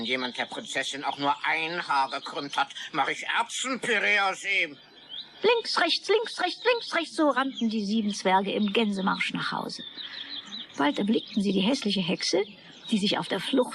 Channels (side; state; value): both; identical; correlation 1.00